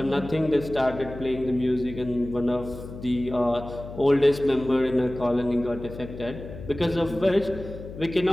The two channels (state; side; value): noise; left; hum, 12 dB below the sound